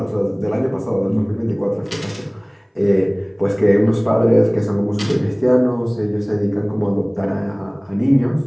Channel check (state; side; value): identical; both; correlation 1.00